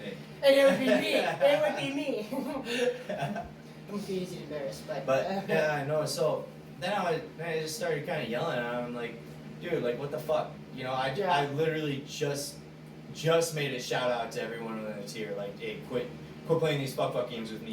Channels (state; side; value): identical; both; correlation 1.00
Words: And it would be me. It would be me. I'm too easy to embarrass, but. Yeah, I know. So then I just started kind of yelling at him, like, dude, like, what the fuck? You know, I literally just made a shout out to everyone in the tier, like, hey, quit playing these fuck games with me.